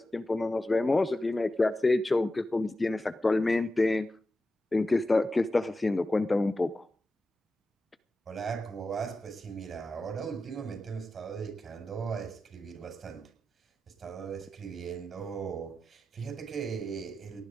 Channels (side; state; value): both; normal; correlation 0.92